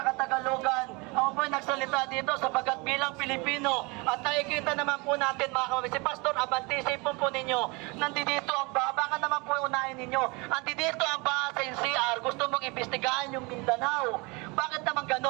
Katagalugan, ako po ay nagsalita dito sapagkat bilang Pilipino at nakikita naman po natin mga kapatid, si Pastor Abante, isipon po ninyo, nandito ang baha, baka naman po unahin ninyo, nandito ang baha sa NCR, gusto mong imbestigahan yung Mindanao. Bakit naman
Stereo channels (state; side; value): quieter; left; 27.6 dB